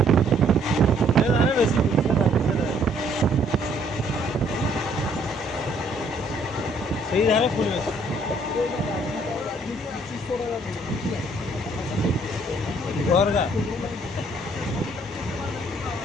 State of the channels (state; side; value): normal; both; correlation 0.64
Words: सही धारे फूल में घर का